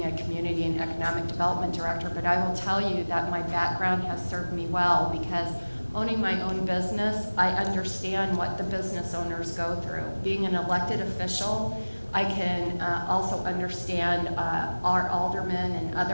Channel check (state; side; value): inverted; both; correlation -1.00